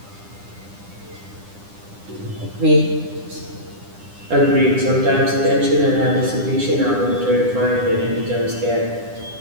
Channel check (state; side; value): late; left; 9.9 ms